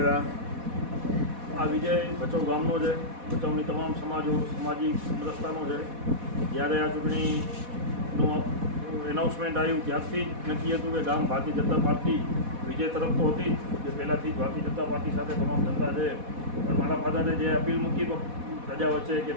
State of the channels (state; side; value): late; left; 4.1 ms